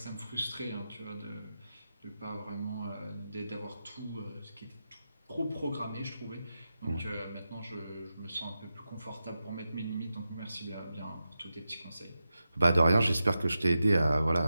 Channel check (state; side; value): inverted; both; correlation -0.90